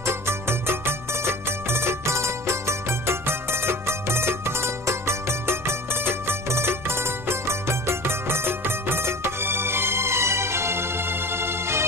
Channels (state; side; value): noise; left; rumble, 19 dB below the sound